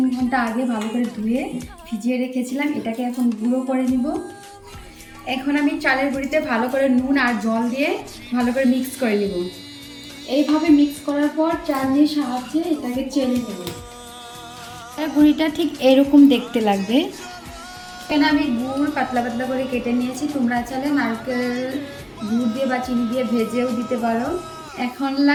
ঘন্টা আগে ভালো করে ধুয়ে ভিজিয়ে রেখেছিলাম। এটাকে এখন গুঁড়ো করে নিব। এখন আমি চালের গুঁড়িতে ভালো করে নুন আর জল দিয়ে ভালো করে মিক্স করে নিব। এইভাবে মিক্স করার পর চালনির সাহায্যে এটাকে চেলে নেব। গুঁড়িটা ঠিক এরকম দেখতে লাগবে। এখানে আমি গুড় পাতলা পাতলা করে কেটে নিয়েছি। তোমরা চাইলে নারকেল গুড় দিয়ে বা চিনি দিয়ে ভেজেও দিতে পারো। এখন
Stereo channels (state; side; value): identical; both; correlation 1.00